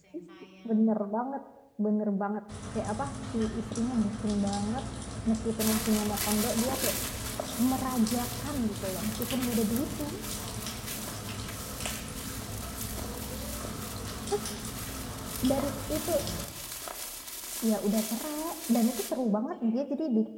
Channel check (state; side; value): identical; both; correlation 1.00